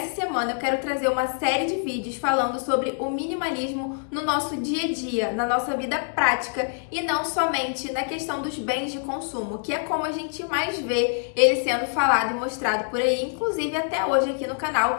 semana eu quero trazer uma série de vídeos falando sobre o minimalismo no nosso dia a dia, na nossa vida prática e não somente na questão dos bens de consumo, que é como a gente mais vê ele sendo falado e mostrado por aí, inclusive até hoje aqui no canal.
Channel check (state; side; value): silent; right; digital silence